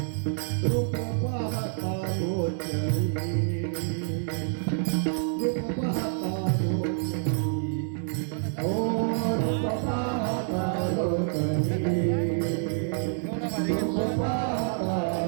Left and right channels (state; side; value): silent; left; 57 dB below the other